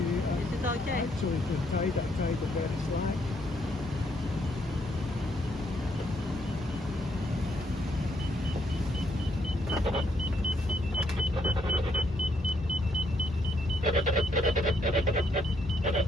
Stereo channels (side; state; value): both; normal; correlation 0.73